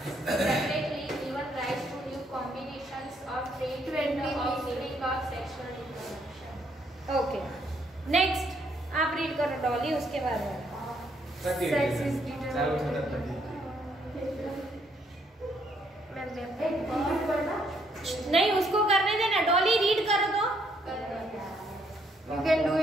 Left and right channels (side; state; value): both; normal; correlation 0.71